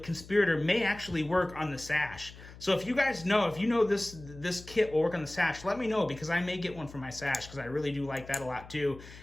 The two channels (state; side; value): noise; left; hum, 17 dB below the sound